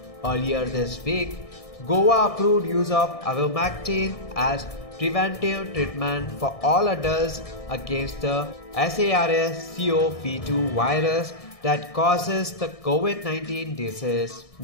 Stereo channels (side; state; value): right; late; 1.6 ms